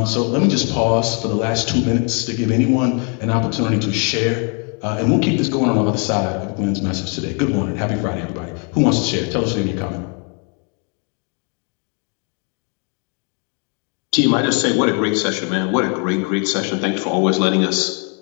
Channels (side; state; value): right; quieter; 37.8 dB